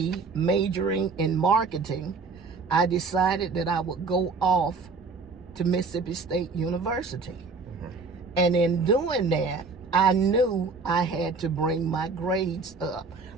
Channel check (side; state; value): left; quieter; 4.3 dB